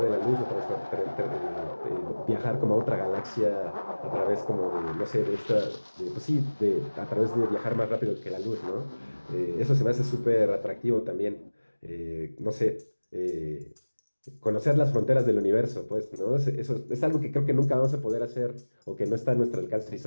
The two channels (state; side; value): inverted; both; correlation -1.00